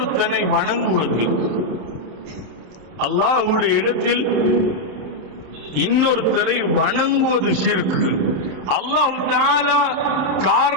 வணங்குவது. அல்லாஹ்வுடைய இடத்தில் இன்னொருத்தரை வணங்குவது ஷிர்க். அல்லாஹ் தஆலா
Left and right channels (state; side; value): late; left; 27 ms